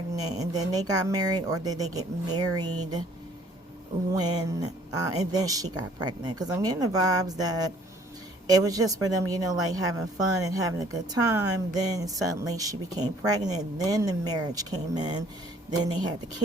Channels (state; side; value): normal; both; correlation 0.58